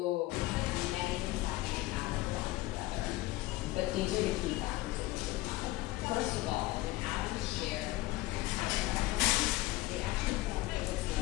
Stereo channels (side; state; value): right; quieter; 18.4 dB